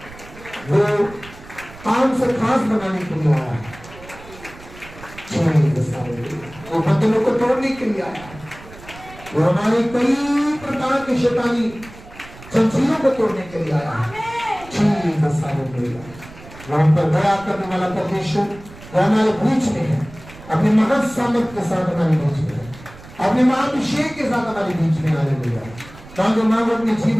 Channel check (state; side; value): noise; right; rumble, 19 dB below the sound